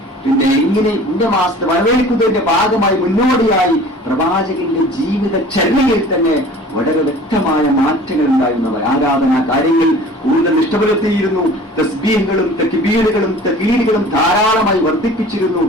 മാസത്തെ വരവേൽക്കുന്നതിന്റെ ഭാഗമായി മുന്നോടിയായി പ്രവാചകന്റെ ജീവിതചര്യയിൽ തന്നെ വളരെ വ്യക്തമായ മാറ്റങ്ങൾ ഉണ്ടായിരുന്നവർ. ആരാധനാ കാര്യങ്ങൾ കൂടുതൽ ഇഷ്ടപ്പെടുത്തിയിരുന്നു. തസ്ബീഹുകളും തക്ബീറുകളും തഖ്ലീലുകളും ധാരാളമായി വർദ്ധിപ്പിച്ചിരുന്നു.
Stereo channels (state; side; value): normal; both; correlation 0.45